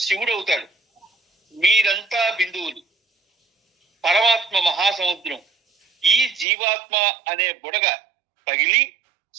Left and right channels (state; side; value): drops out; left; at 6.5 s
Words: శివుడవుతాడు. మీరంతా బిందువులు, పరమాత్మ మహాసముద్రం. ఈ జీవాత్మ అనే బుడగ పగిలి